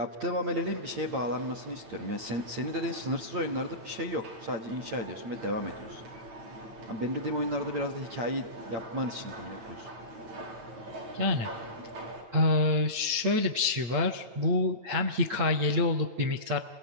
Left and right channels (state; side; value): late; left; 9.0 ms